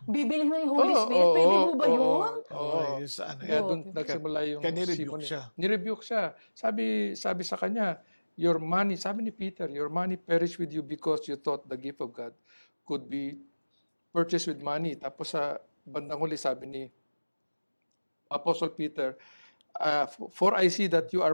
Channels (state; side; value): inverted; both; correlation -1.00